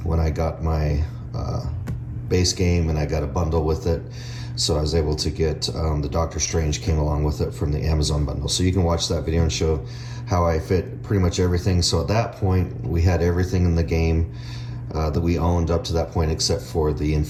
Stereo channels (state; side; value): identical; both; correlation 1.00